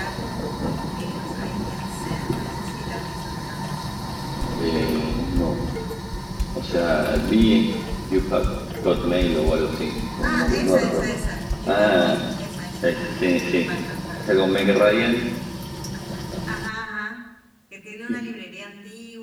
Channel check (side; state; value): both; identical; correlation 1.00